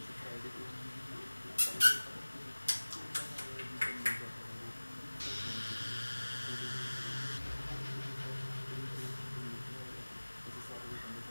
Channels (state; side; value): inverted; both; correlation -1.00